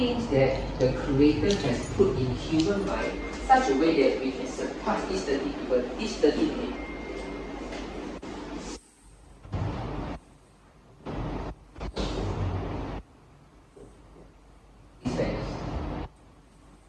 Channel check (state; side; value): identical; both; correlation 1.00